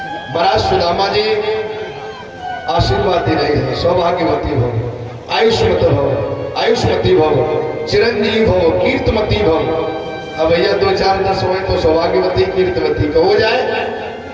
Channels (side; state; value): both; identical; correlation 1.00